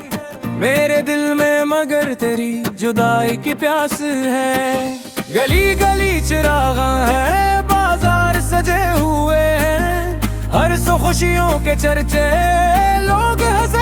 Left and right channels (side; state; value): both; identical; correlation 1.00